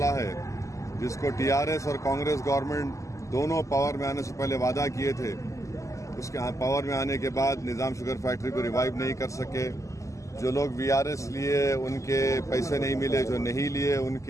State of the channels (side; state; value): right; late; 0.16 ms